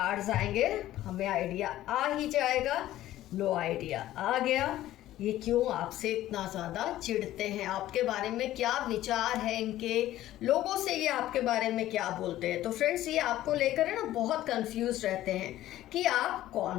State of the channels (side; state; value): right; quieter; 14.3 dB